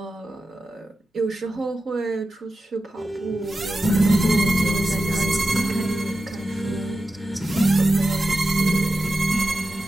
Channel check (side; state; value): both; normal; correlation 0.92